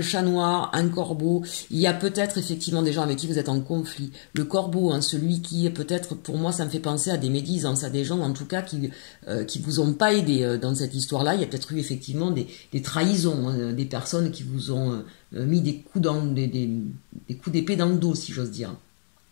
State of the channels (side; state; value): right; silent; digital silence